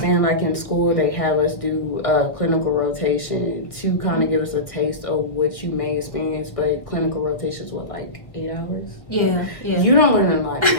like in school they have us do a clinical rotation to kind of give us a taste of what you may experience, but clinical rotations, what, like 8 hours? Yeah. You don't learn a lot in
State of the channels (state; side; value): late; right; 1.2 ms